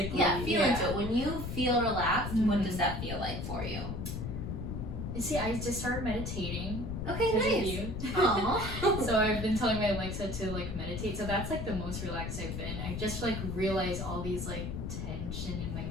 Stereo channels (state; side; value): noise; left; rumble, 5 dB below the sound